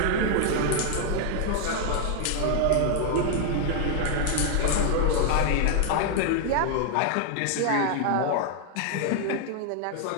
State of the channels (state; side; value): different; both; correlation 0.00